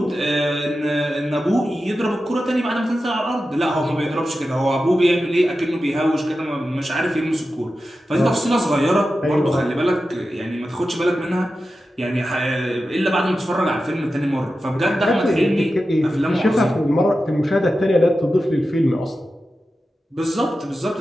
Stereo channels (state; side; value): normal; both; correlation 0.92